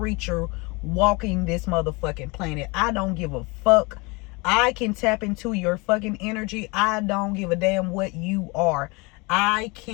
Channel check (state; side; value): quieter; right; 27.1 dB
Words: walking this motherfucking planet. I don't give a fuck. I can tap into your fucking energy. I don't give a damn what you are. I